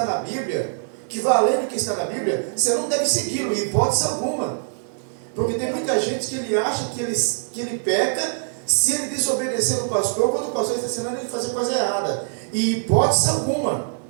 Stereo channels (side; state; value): left; silent; digital silence